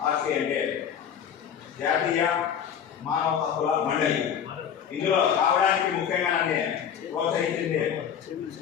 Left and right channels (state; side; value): quieter; right; 8.4 dB